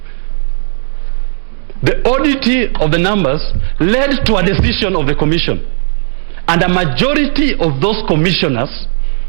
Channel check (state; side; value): silent; left; 66 dB below the other